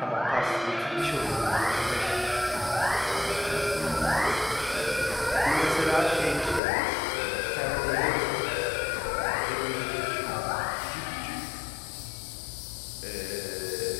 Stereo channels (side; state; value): right; drops out; at 6.6 s